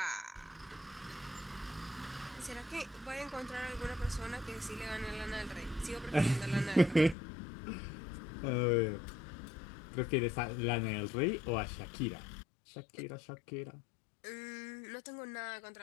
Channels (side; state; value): right; drops out; at 7.2 s